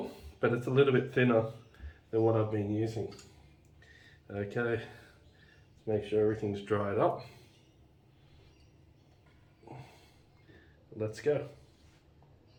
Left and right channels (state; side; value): identical; both; correlation 1.00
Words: but it's a little bit thinner than what I've been using. Okay, let's make sure everything's dried up. Let's go.